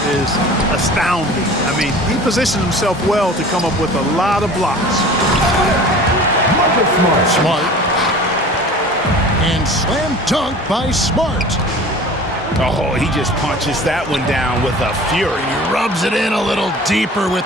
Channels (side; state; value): both; normal; correlation 0.42